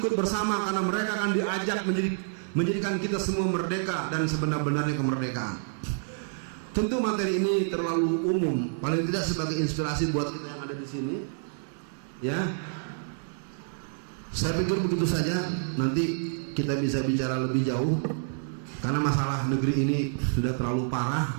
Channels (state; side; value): silent; left; digital silence